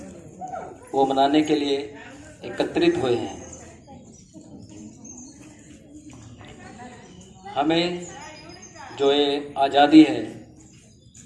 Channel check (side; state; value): both; identical; correlation 1.00